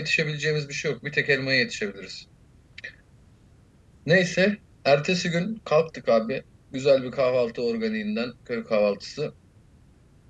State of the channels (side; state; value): both; identical; correlation 1.00